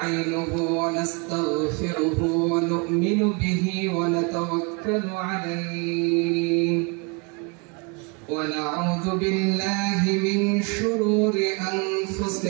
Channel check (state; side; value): quieter; left; 31.5 dB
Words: ونستغفره ونؤمن به ونتوكل عليه ونعوذ بالله من شرور